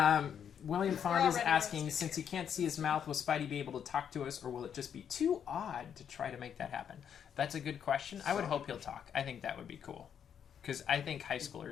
William We're Fond is already asking, roasted. since he can't see his mouth, will Spidey be able to talk to us, or will it just be too odd to try to make that happen? That's a good question. I would hope he'll talk. I think that would be cool. Because I think high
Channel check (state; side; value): quieter; right; 8.3 dB